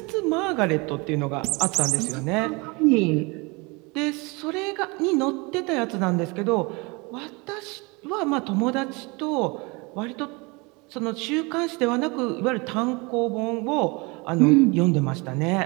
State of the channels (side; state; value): left; quieter; 27.3 dB